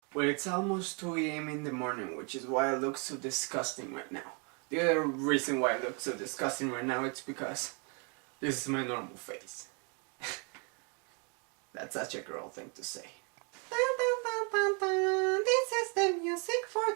Well, it's almost 2 a.m. in the morning, which is why I look so disgusting right now. The other reason why I look so disgusting right now is because this is my normal face. That's such a girl thing to say. Dun, dun, dun, dun, dun. This is the music for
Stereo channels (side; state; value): left; quieter; 35.7 dB